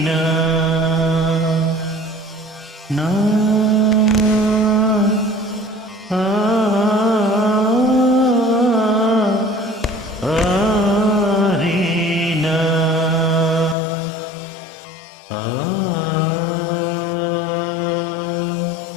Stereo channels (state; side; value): drops out; right; at 13.8 s